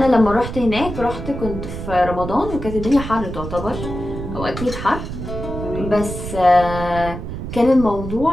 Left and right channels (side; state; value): right; noise; rumble, 7 dB below the sound